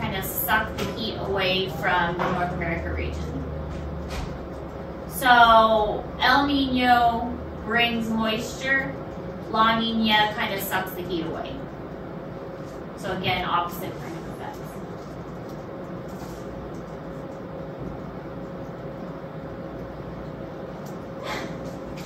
kind of suck the heat away from the North America region. So El Nino brings moisture, La Nina kind of sucks the heat away. So again, opposite kind of effects.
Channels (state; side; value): identical; both; correlation 1.00